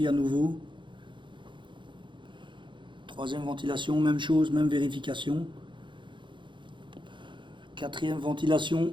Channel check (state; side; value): late; left; 0.23 ms